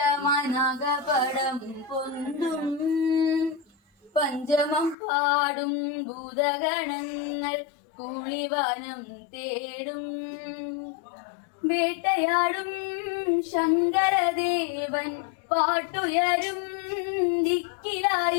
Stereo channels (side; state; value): right; drops out; at 5.0 s